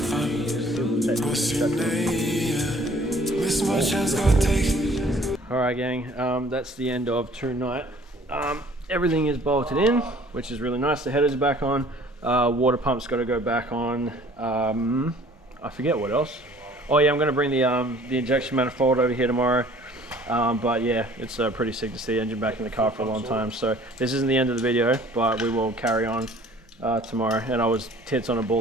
Alright gang, that's the end of tonight. Everything is bolted in, which is really nice. The header's back on. Water pump's got to go back on. I forget what else. Oh yeah, I'm going to bring the injection manifold over here tomorrow. But yeah, it's pretty sick to see the engine back in the car for a long time. So this isn't the end of the video, but we will carry on tomorrow. And I was tits on a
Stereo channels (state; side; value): normal; both; correlation 0.53